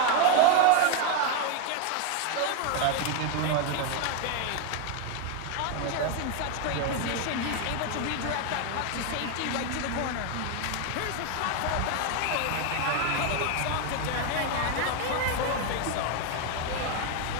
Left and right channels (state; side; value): different; both; correlation 0.01